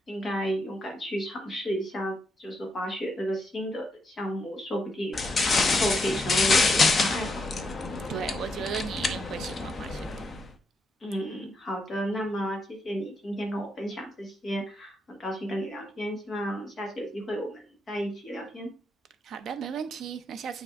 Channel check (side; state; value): both; normal; correlation 0.79